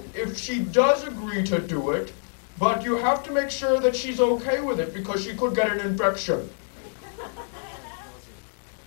if she does agree to do it, but you have to make sure that she's okay with it, because she could get an infection.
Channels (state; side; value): silent; right; 61 dB below the other